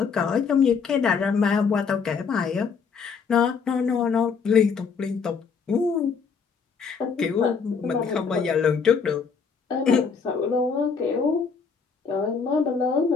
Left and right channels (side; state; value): right; quieter; 5.7 dB